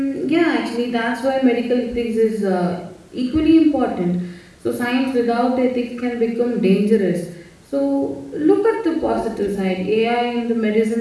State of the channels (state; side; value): identical; both; correlation 1.00